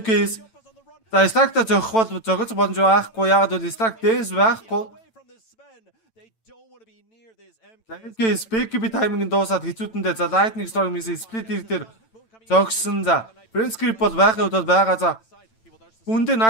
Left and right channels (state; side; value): late; right; 9.0 ms